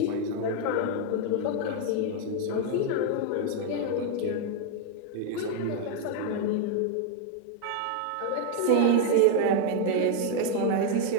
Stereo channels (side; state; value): both; different; correlation 0.00